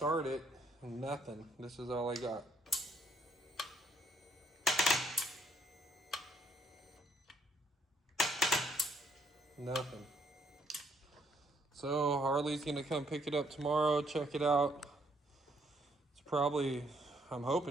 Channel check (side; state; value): both; normal; correlation 0.69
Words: it, and nothing. This is all I got. Nothing. So Harley's gonna come pick it up tomorrow, check it out. It's probably, I'm